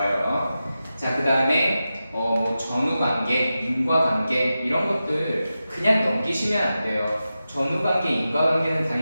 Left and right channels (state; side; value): inverted; both; correlation -0.92